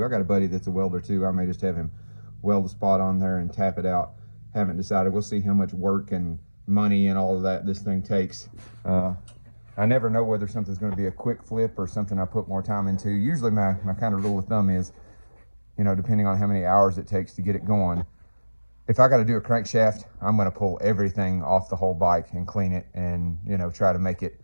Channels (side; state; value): both; inverted; correlation -1.00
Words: I got a buddy that's a welder too. I may just have him weld a spot on there and tap it out. Haven't decided. We'll see how much work and money and all of that this thing takes. I never know whether something's gonna be a quick flip or something I put more time into. Usually my kind of rule of thumb is, you know, depending on how many hours it takes to get it going, if I got to do a crankshaft, I'm going to pull everything off the whole bike and clean it and, you know, try to make it